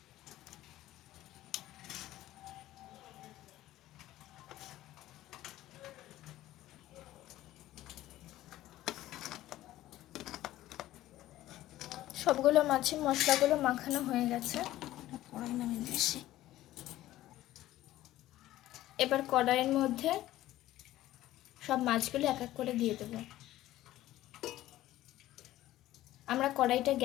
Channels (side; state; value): right; quieter; 14.9 dB